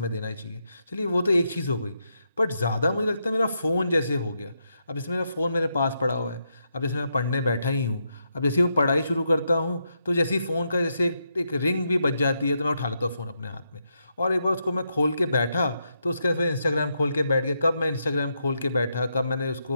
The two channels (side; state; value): both; inverted; correlation -0.82